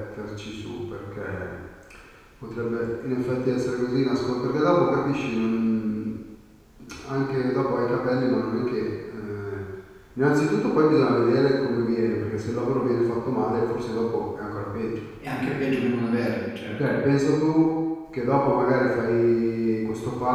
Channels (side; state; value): both; identical; correlation 1.00